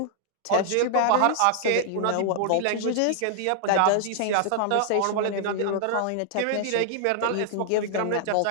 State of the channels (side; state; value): both; different; correlation -0.01